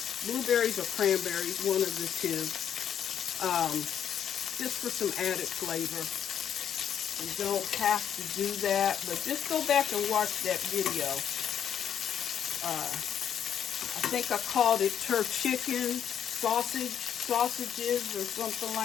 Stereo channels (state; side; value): quieter; right; 9.0 dB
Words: or cranberries, one of the two, just for some added flavor. You don't have to do that, but just go back and watch that video. I think I called it chicken sausages or something